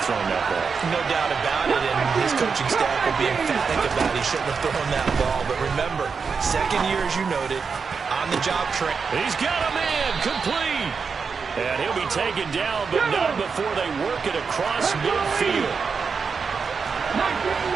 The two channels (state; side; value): quieter; left; 5.5 dB